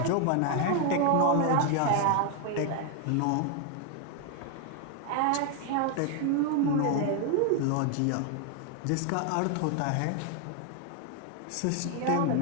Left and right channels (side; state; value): both; different; correlation 0.01